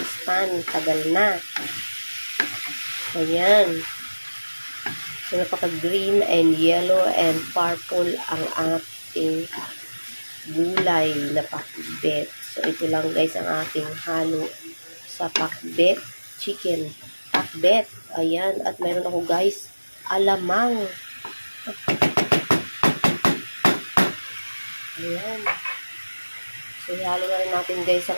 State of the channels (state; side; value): inverted; both; correlation -1.00